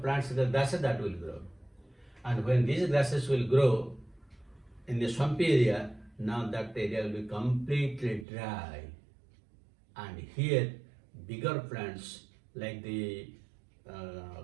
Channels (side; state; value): left; drops out; at 8.2 s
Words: plants, the grasses that will grow. And when these grasses will grow in the swampy area, now that area will be completely dry. And here, bigger plants like the